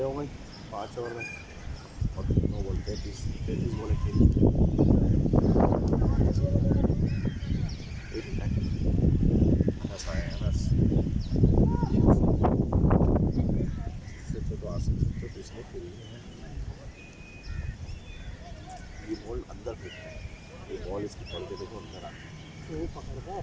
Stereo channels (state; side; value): identical; both; correlation 1.00